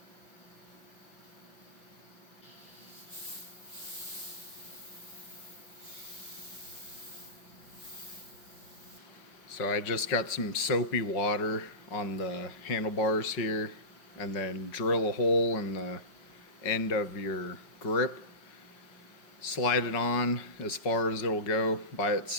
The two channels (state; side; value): late; right; 5.4 ms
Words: So I just got some soapy water on the handlebars here, and then drill a hole in the end of your grip, slide it on as far as it'll go by